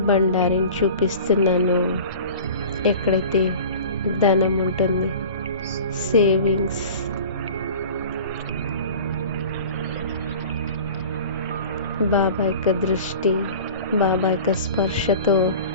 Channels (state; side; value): inverted; both; correlation -0.39